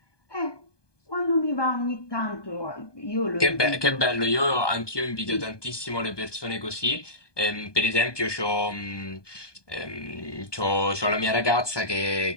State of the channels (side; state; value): right; late; 1.2 ms